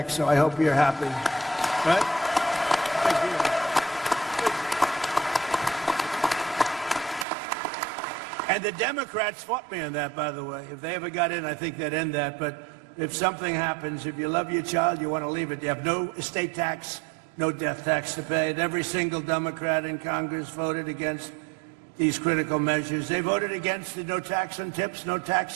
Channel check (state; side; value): drops out; left; at 7.2 s